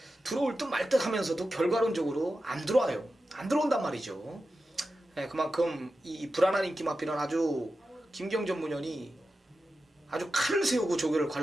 들어올 듯 말 듯 하면서도 결과론적으로 안 들어와요. 안 들어온단 말이죠. 그만큼 이 불안한 인기 마필은 아주 김기영 전문위원이 아주 칼을 세우고 조교를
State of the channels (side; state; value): both; normal; correlation 0.92